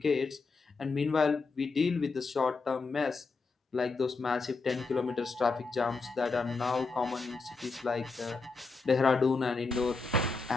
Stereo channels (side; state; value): right; quieter; 4.1 dB